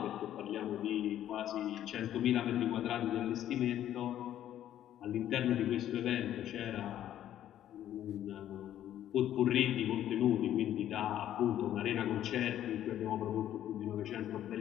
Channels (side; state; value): right; quieter; 11.6 dB